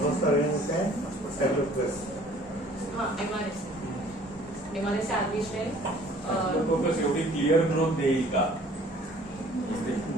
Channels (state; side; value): normal; both; correlation 0.54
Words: होस्ट ऑर्गॅनिक आहे स्टॅफिलोकोकस. हा MRSA आर्मी स्ट्रेन स्टॅफिलोकोकस एवढी क्लिअर ग्रोथ देईल का?